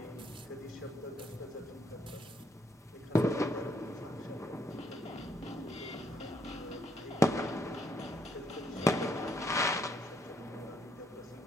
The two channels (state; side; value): normal; both; correlation 0.72